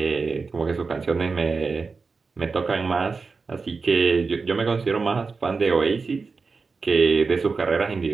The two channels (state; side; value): quieter; left; 4.5 dB